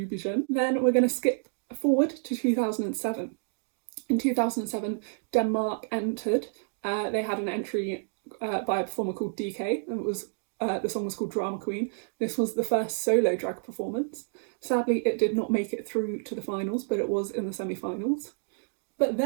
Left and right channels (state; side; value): silent; left; digital silence